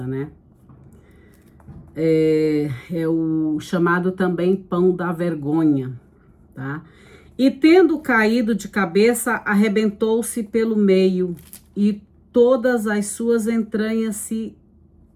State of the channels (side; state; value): both; identical; correlation 1.00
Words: né? É o chamado também pão da vergonha, tá? E tendo caído de cabeça, arrebentou-se pelo meio e todas as suas entranhas se